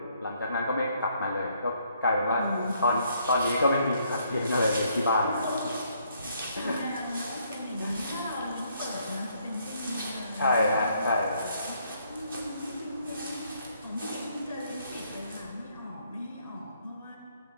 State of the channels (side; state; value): both; inverted; correlation -0.69